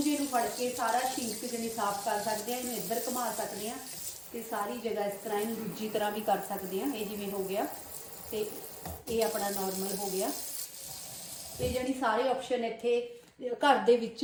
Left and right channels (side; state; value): both; identical; correlation 1.00